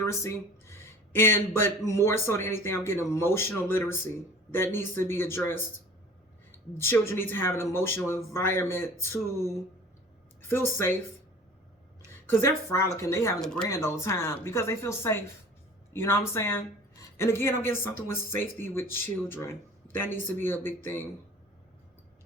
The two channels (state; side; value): normal; both; correlation 0.44